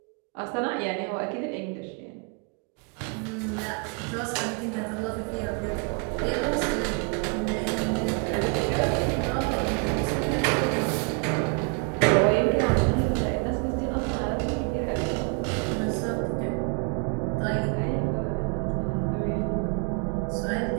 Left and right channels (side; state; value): left; quieter; 36.9 dB